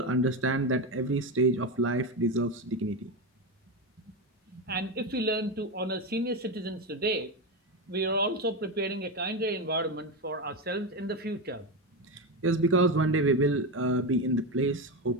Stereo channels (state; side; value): normal; both; correlation 0.14